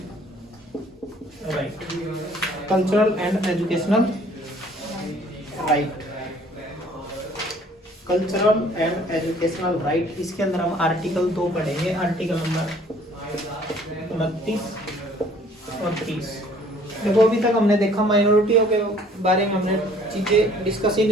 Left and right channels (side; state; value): both; normal; correlation 0.56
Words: right, cultural and educational right, cultural and educational right. इसके अंदर हम article 2 पढ़ेंगे, article number 29 और 30। देखो अभी तक हमने देखा माइनॉरिटियों के बारे में हमने चीजें डिस्कस ही